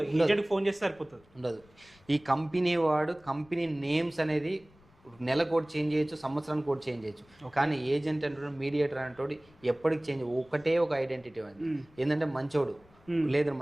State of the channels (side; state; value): left; noise; rumble, 28 dB below the sound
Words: ఉండదు. ఈ కంపెనీ వాడు కంపెనీ నేమ్స్ అనేది నెల కోడ్ చేంజ్ చేయొచ్చు, సంవత్సరానికి కోడ్ చేంజ్ చేయొచ్చు. కానీ ఏజెంట్ అంటే మీడియేటర్ అంటే ఎప్పటికి చేంజ్, ఒకటే ఒక ఐడెంటిటీ అది ఏంటంటే మంచోడు, లేదా